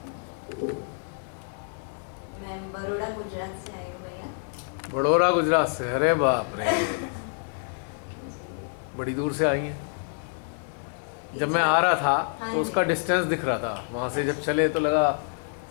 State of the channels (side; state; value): right; silent; 60 dB below the other